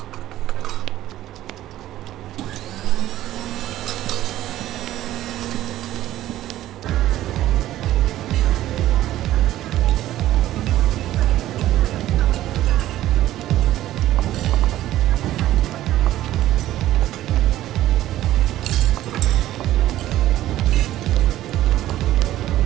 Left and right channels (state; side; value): quieter; left; 14.0 dB